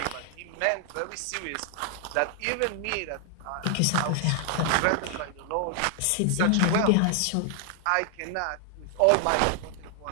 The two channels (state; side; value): different; both; correlation 0.00